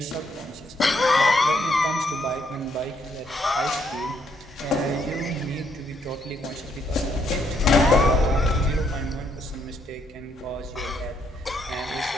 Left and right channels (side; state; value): both; normal; correlation 0.72